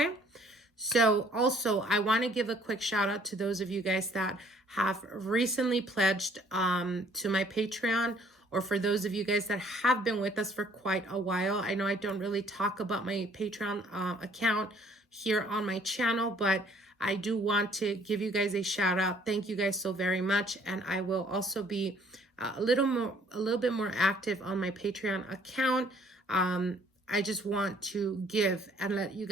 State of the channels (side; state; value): both; normal; correlation 0.60